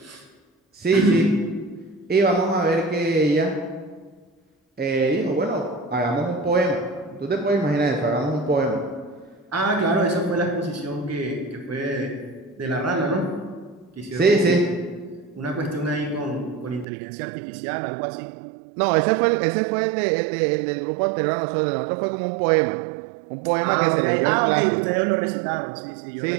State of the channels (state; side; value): drops out; left; at 16.9 s